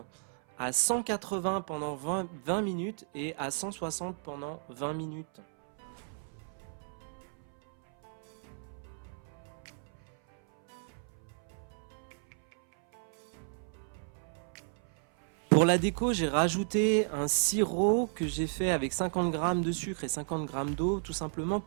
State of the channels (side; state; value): left; silent; 55 dB below the other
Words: à 180 pendant 20 minutes et à 160 pendant 20 minutes. Pour la déco, j'ai rajouté un sirop que j'ai fait avec 50 g de sucre et 50 g d'eau, tout simplement